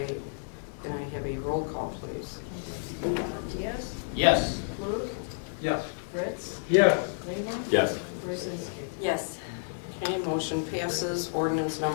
Can I have a roll call, please? Diaz? Yes. Klug? Yes. Fritz? Yes. Lehman? Yes. Gorzinski? Yes. Okay, motion passes. Ordinance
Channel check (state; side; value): silent; right; 58 dB below the other